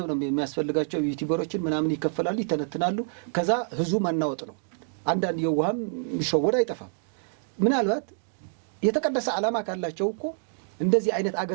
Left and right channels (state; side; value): silent; left; digital silence